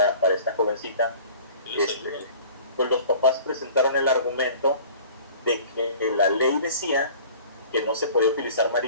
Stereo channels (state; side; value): inverted; both; correlation -0.46